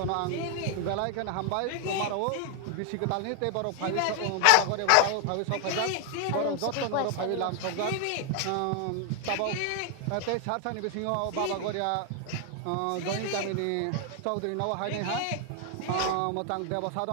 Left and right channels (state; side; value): different; both; correlation 0.00